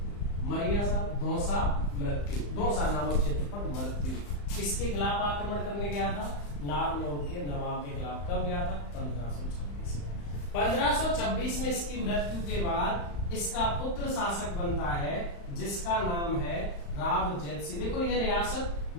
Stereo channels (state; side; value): late; right; 35 ms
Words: मरिया साहब, धौसा मृत्यु, धौसा नामक क्षेत्र पर मृत्यु। किसके खिलाफ आक्रमण करने गया था? नारनौल के नवाब के खिलाफ। कब गया था? 1526 में। 1526 में इसकी मृत्यु के बाद इसका पुत्र शासक बनता है, जिसका नाम है राव जैतसी। देखो ये रियासत